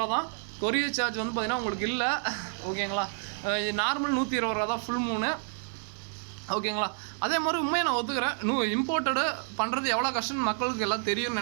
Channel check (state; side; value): silent; left; digital silence